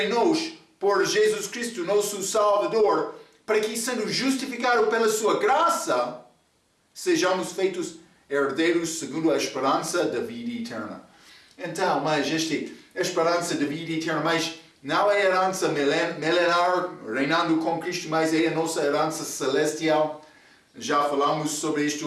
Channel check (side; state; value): both; identical; correlation 1.00